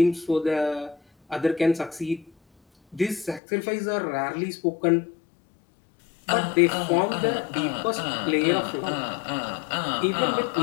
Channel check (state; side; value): drops out; right; at 3.4 s